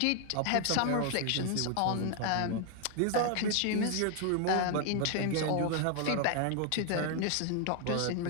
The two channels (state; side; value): different; both; correlation 0.00